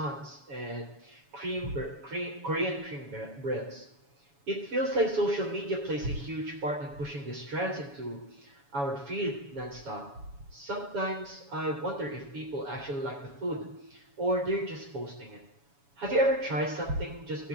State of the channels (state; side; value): late; left; 7.1 ms